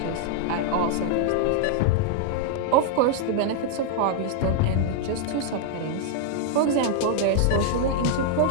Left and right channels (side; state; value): both; different; correlation -0.01